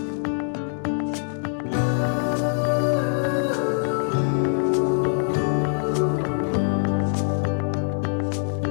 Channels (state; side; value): silent; right; digital silence